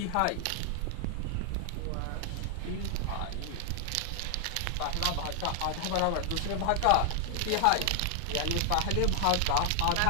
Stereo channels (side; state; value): both; different; correlation 0.00